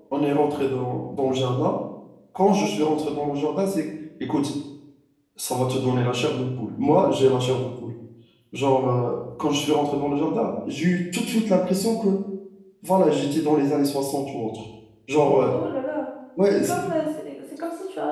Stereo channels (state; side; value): identical; both; correlation 1.00